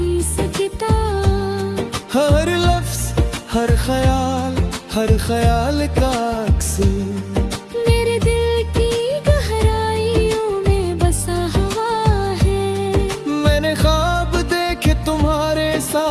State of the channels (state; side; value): identical; both; correlation 1.00